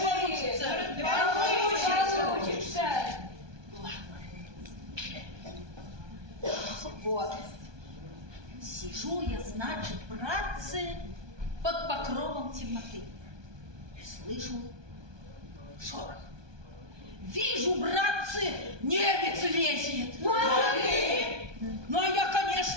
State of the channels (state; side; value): late; left; 1.2 ms